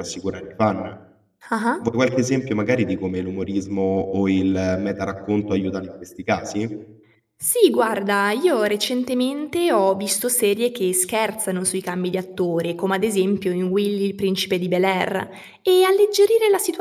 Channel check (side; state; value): both; identical; correlation 1.00